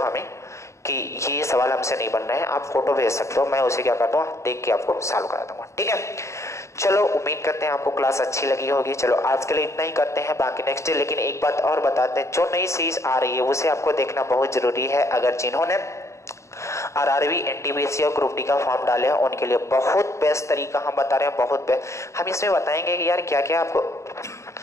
हमें कि ये सवाल हमसे नहीं बन रहे हैं। आप फोटो भेज सकते हो, मैं उसे क्या करता हूँ देख के आपको सॉल्व करा दूंगा, ठीक है। चलो उम्मीद करते हैं आपको क्लास अच्छी लगी होगी। चलो आज के लिए इतना ही करते हैं, बाकी नेक्स्ट डे। लेकिन एक बात और बताते हैं, जो नई सीरीज आ रही है उसे आपको देखना बहुत जरूरी है। अगर जिन्होंने आरआरबी एनटीपीसी और ग्रुप डी का फॉर्म डाले हैं उनके लिए बहुत बेस्ट तरीका हम बता रहे हैं, बहुत बेस्ट। हम इसमें बताएंगे कि यार क्या क्या आपको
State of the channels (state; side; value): late; right; 0.14 ms